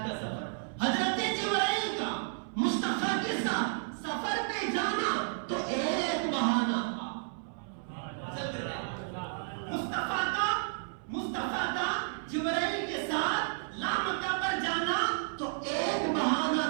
का सफर। हजरत जिब्राइल का मुस्तफा के साथ सफर में जाना तो एक बहाना था। मुस्तफा का जिब्राइल के साथ लामका पर जाना तो एक बहाना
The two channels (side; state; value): left; silent; 56 dB below the other